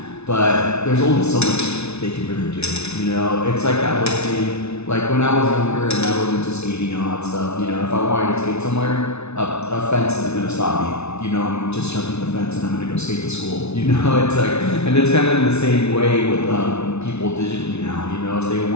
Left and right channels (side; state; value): right; late; 0.81 ms